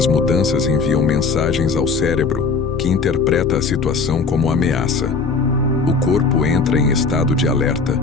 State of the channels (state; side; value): quieter; right; 4.7 dB